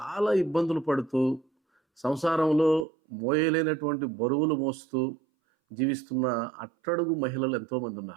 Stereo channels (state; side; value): drops out; left; at 2.9 s